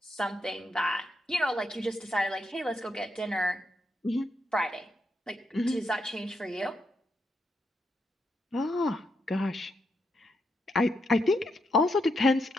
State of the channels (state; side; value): normal; both; correlation 0.81